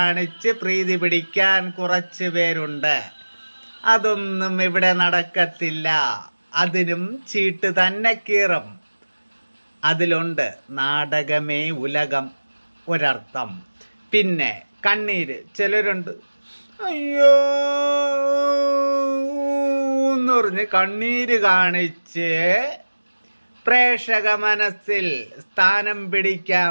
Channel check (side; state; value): both; inverted; correlation -1.00